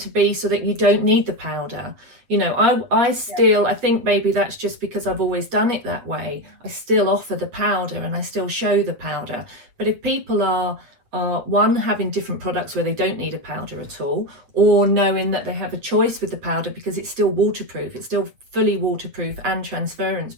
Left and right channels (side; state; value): left; late; 8.2 ms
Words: be so that you don't need the powder. You know, I still, I think maybe that's just because I've always done it that way. I still offer the powder and I still show the powder. But if people are one, having different products where they don't need a powder at all, or knowing that they have a choice with the powder because it's still waterproof, it's still fully waterproof and transference